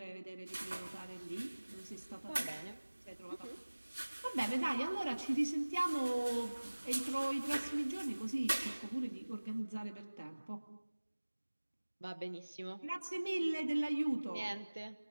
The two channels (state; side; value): inverted; both; correlation -1.00